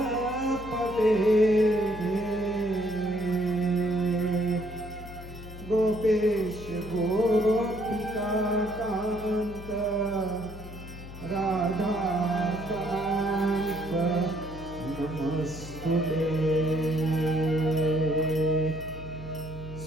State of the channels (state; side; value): noise; left; hum, 13 dB below the sound